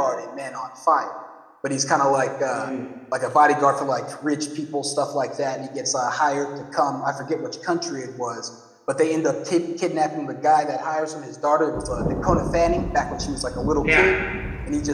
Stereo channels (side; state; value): both; identical; correlation 1.00